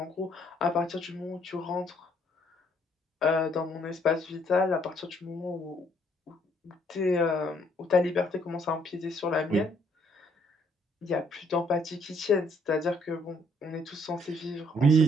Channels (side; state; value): both; normal; correlation 0.66